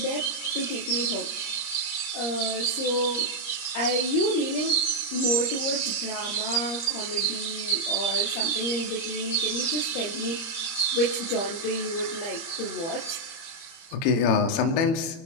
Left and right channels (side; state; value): right; late; 30 ms